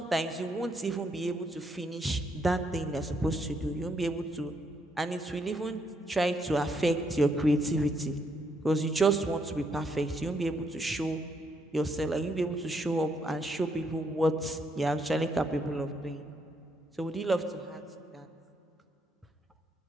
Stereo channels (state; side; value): normal; both; correlation 0.74